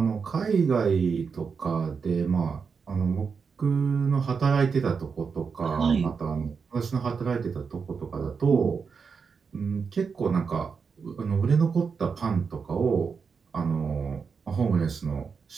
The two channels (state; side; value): quieter; left; 5.7 dB